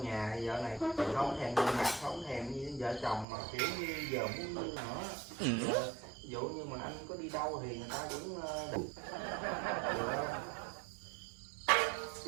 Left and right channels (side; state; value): left; drops out; at 3.2 s